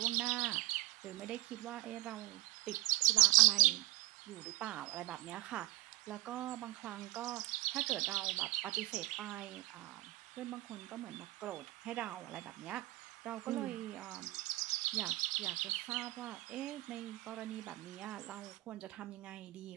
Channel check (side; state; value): left; quieter; 19.0 dB